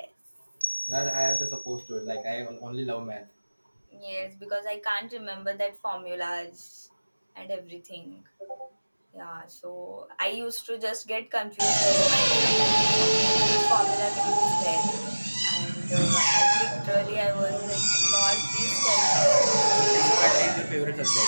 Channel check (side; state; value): both; inverted; correlation -1.00